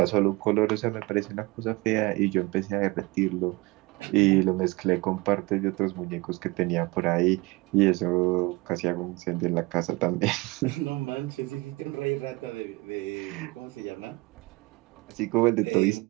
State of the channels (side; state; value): left; quieter; 23.4 dB